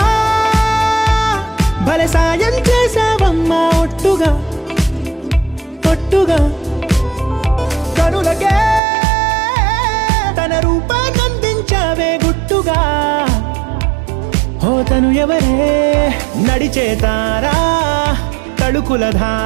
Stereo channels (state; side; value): drops out; left; at 8.8 s